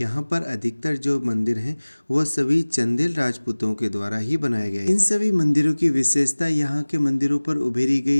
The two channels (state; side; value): inverted; both; correlation -1.00